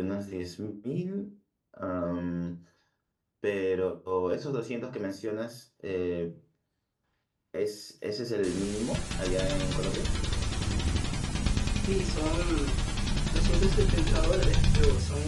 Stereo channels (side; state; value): both; identical; correlation 1.00